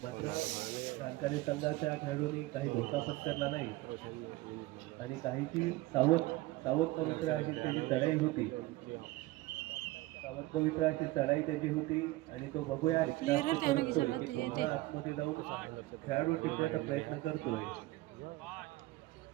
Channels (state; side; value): quieter; left; 19.0 dB